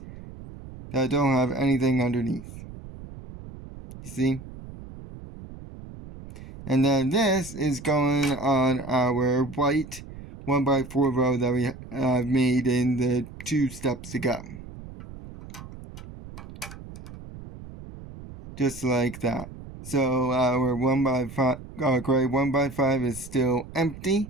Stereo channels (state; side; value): noise; right; rumble, 14 dB below the sound